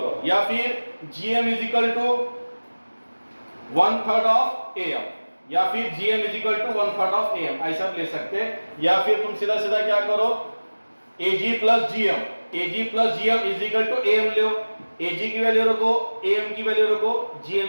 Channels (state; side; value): inverted; both; correlation -1.00